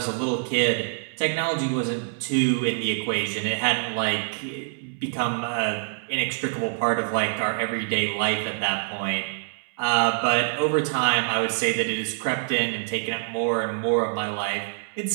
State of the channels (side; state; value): left; silent; 61 dB below the other